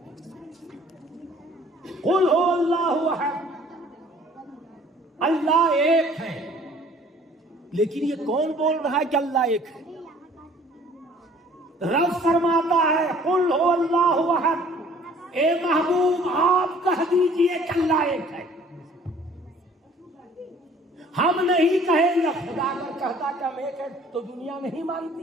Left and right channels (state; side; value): normal; both; correlation 0.54